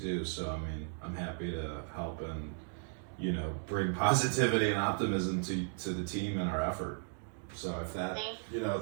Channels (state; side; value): silent; left; 54 dB below the other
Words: So I mean, I'm happy to help and bring positivity and optimism to the team and our effort. So if that,